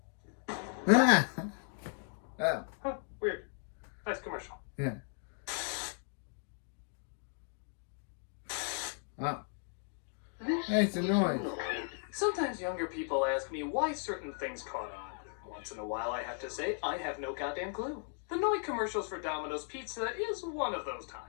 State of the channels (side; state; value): right; silent; 54 dB below the other